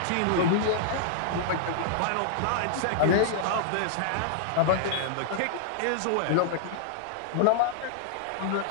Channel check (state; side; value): different; both; correlation -0.01